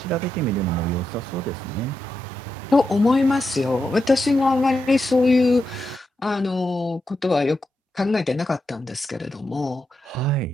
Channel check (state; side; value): normal; both; correlation 0.86